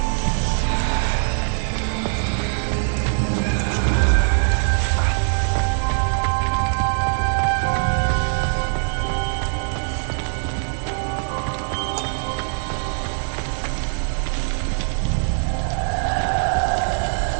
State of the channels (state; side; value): silent; left; digital silence